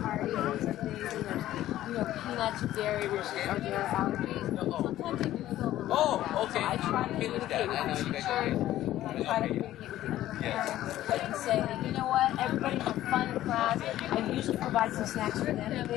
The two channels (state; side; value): quieter; right; 13.8 dB